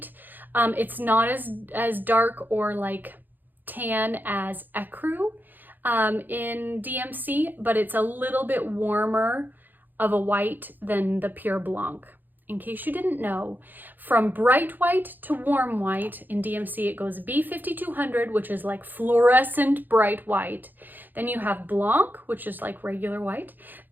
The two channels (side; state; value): left; late; 0.088 ms